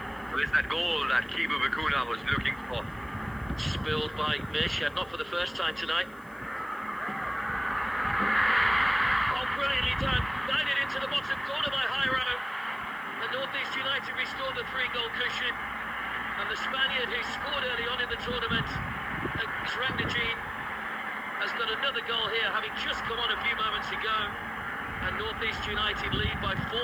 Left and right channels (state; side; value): noise; left; hiss, 27 dB below the sound